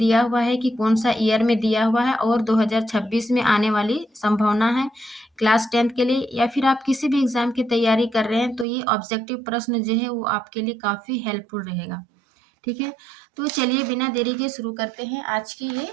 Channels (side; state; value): left; drops out; at 8.7 s